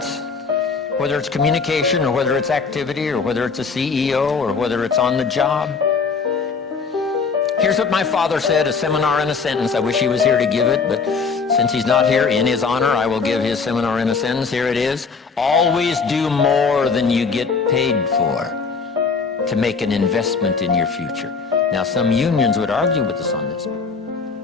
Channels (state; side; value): quieter; right; 5.1 dB